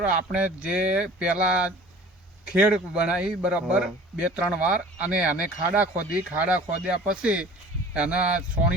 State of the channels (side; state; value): both; normal; correlation 0.45